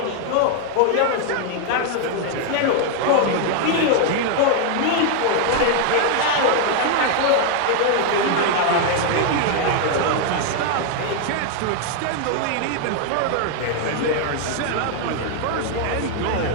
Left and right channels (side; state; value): both; different; correlation 0.00